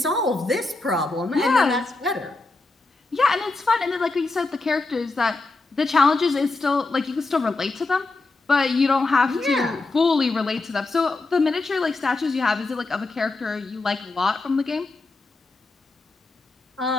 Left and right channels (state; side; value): quieter; right; 3.4 dB